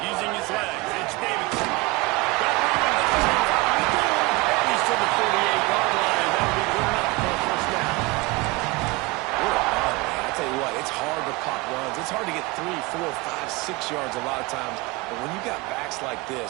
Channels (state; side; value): quieter; left; 23.7 dB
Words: It's hard to get 3, 4, 5, 6 yards a lot of times, but when you got backs like